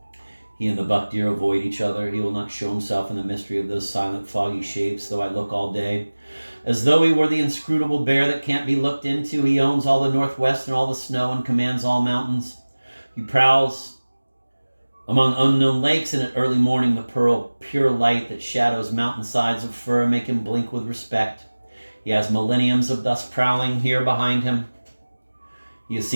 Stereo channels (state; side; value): inverted; both; correlation -1.00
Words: He and the buck deer avoid each other. He will not show himself in the mystery of those silent foggy shapes, though I look all day. As though he were the inscrutable bear that can't be looked into, he owns all the northwest and all the snow and commands all mountains. He prowls among unknown lakes, and at early morning the pearl pure light that shadows mountainsides of fir make him blink with respect. He has millenniums of thus prowling here behind him. He has